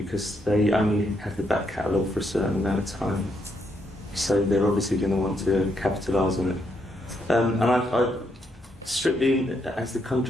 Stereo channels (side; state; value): both; normal; correlation 0.77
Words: they only have the back catalogue for a certain amount of time, so they're obviously going to want to capitalise on it. And I strictly, as the